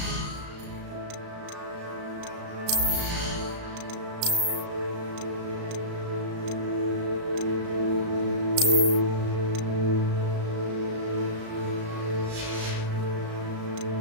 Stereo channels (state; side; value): late; left; 35 ms